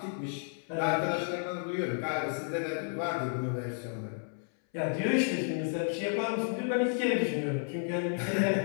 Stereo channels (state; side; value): silent; right; 56 dB below the other